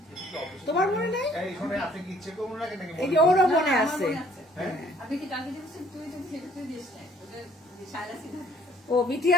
তোমার মনে নেই? এই যে ওরও মনে আছে। আপনি কি কালকে দিয়েছেন? তুই তো সেটা দিস না, ও মিঠি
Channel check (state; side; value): normal; both; correlation 0.60